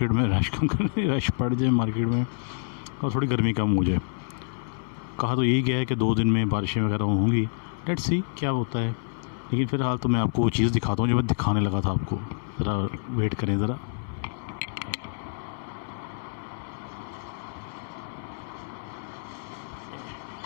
में, रश कम करने रश बढ़ जाए मार्केट में और थोड़ी गर्मी कम हो जाए। कहा तो यही गया है कि 2 दिन में बारिशें वगैरह होंगी, लेट्स सी क्या होता है। लेकिन फ़िलहाल तो मैं आपको वो चीज़ दिखाता हूँ जो मैं दिखाने लगा था आपको। ज़रा वेट करें ज़रा।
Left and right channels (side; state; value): right; silent; 60 dB below the other